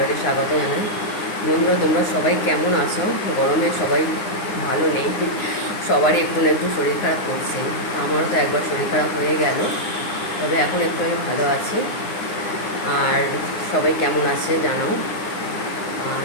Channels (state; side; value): late; right; 9.7 ms